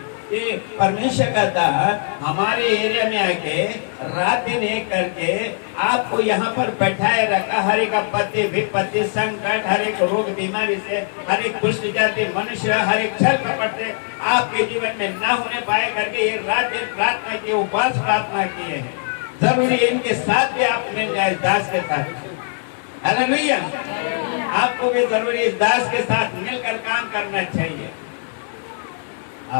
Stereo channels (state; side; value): silent; right; 65 dB below the other